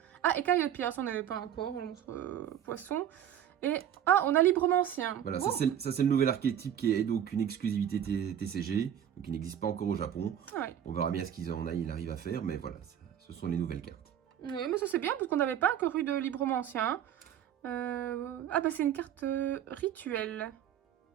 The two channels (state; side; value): quieter; left; 9.8 dB